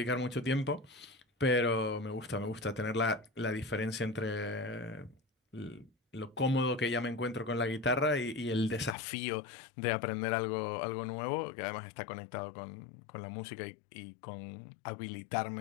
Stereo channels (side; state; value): right; drops out; at 9.0 s